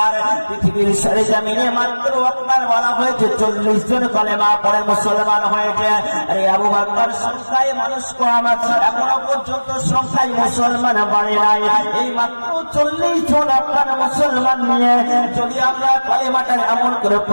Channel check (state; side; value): inverted; both; correlation -1.00